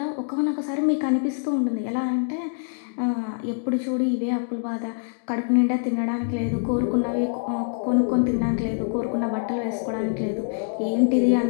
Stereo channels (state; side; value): silent; right; digital silence